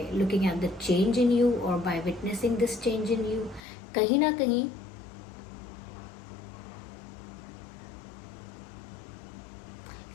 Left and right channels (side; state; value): right; drops out; at 3.6 s